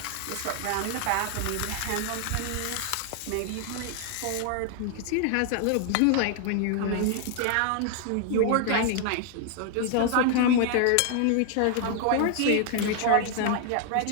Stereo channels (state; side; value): different; both; correlation 0.00